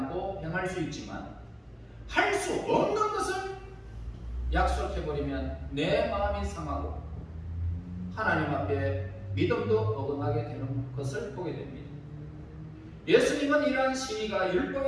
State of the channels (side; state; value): both; identical; correlation 1.00